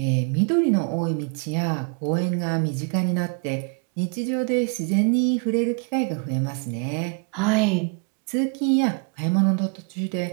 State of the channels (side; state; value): left; quieter; 36.8 dB